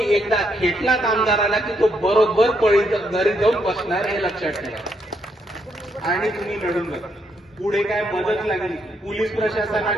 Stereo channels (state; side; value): normal; both; correlation 0.76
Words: एकदा खेटलात आमदाराला की तो बरोबर घरी जाऊन बसणार, हे लक्षात ठेवा. आणि तुम्ही लढून बघा. पुढे काय मदत लागली, पोलीस